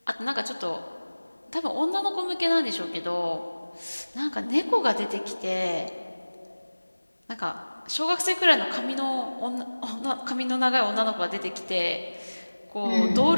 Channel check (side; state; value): both; inverted; correlation -1.00